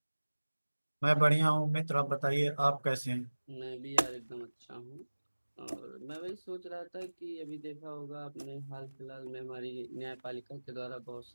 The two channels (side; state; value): both; inverted; correlation -1.00